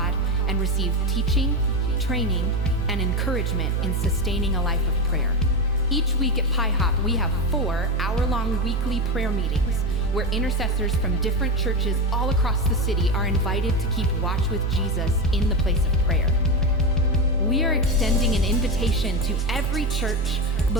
and receive teaching, training, and encouragement in sustaining a life of prayer. Each week at Pi Hop, we have 4 hour-long weekly prayer meetings where intercessors from different churches all across the city are invited to keep watch with Jesus in the place of prayer. We are extending an invitation to every church,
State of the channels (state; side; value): normal; both; correlation 0.15